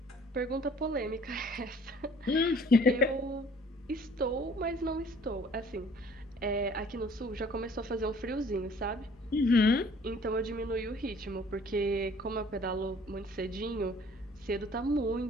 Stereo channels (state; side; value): normal; both; correlation 0.55